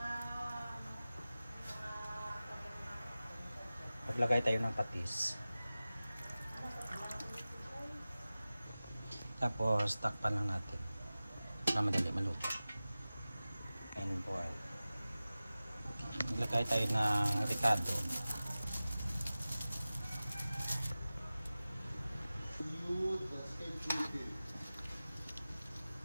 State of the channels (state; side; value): inverted; both; correlation -0.96